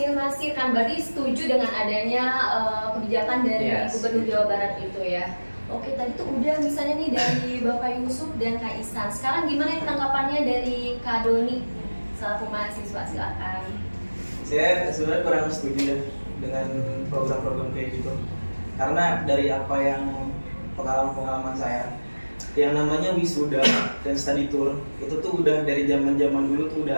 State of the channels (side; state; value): both; inverted; correlation -1.00